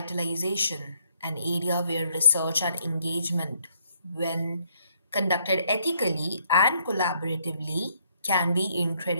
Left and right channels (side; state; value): both; inverted; correlation -0.69